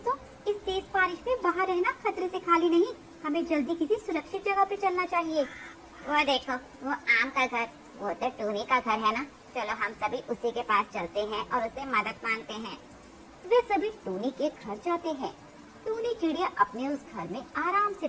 इस तेज बारिश में बाहर रहना खतरे से खाली नहीं, हमें जल्दी किसी सुरक्षित जगह पे चलना चाहिए। वो देखो, वो आम का घर, वो तो टूनी का घर है ना। चलो हम सभी उसी के पास चलते हैं और उससे मदद मांगते हैं। वे सभी टूनी के घर जाते हैं। टूनी चिड़िया अपने उस घर में आराम से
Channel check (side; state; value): both; identical; correlation 1.00